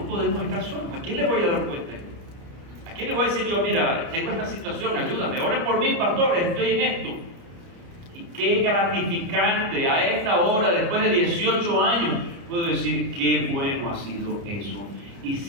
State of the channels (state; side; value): late; left; 29 ms